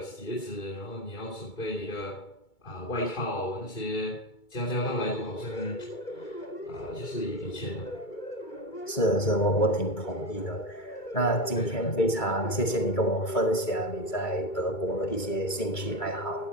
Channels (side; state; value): right; late; 2.2 ms